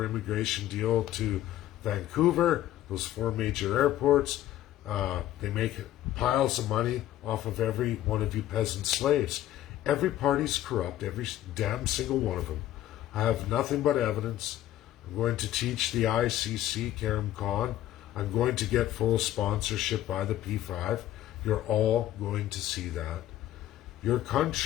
immigration deal to Vancouver, those 4 major airports. They make piles of money off of every one of you peasant slaves. Every party's corrupt, every damn single one of them. I have nothing but evidence. I'm going to teach the ICC, Karim Khan. I'm going to get full sponsorship by the P5. You're all going to see that. Your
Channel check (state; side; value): quieter; right; 13.3 dB